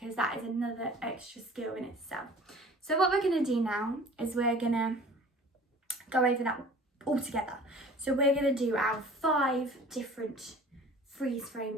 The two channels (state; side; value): normal; both; correlation 0.46